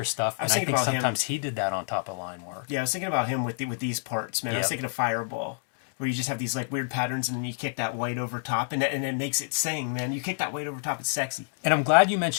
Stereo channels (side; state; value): right; silent; digital silence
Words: stuff. And I thinking think about him. sometimes he did that on top of line work. yeah, I was thinking about him with these parts, man. I was Yep. thinking of Fireball, where you just have these like weird patterns and then you kick that white over top and it makes it sing, man. You kick that white over top, it's sexy. And I'm glad you